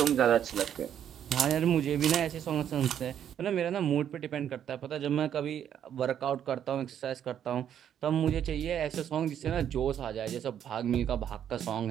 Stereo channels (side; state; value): left; quieter; 9.6 dB